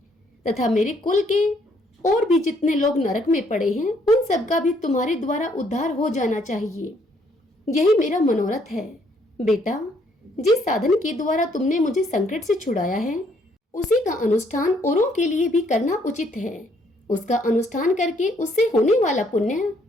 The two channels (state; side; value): normal; both; correlation 0.68